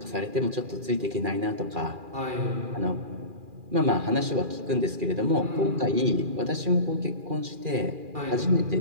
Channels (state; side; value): late; left; 2.4 ms